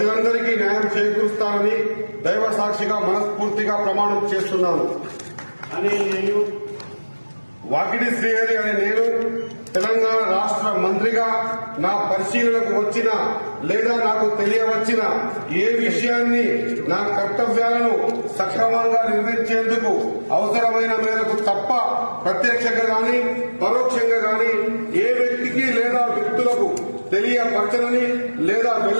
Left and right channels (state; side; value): inverted; both; correlation -1.00